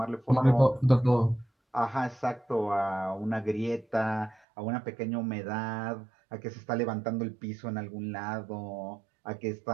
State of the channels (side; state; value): left; drops out; at 4.4 s